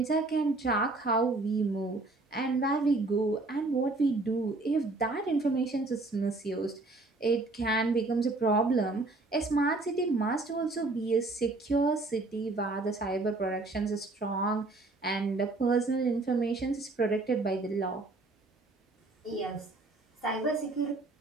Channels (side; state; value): left; quieter; 3.2 dB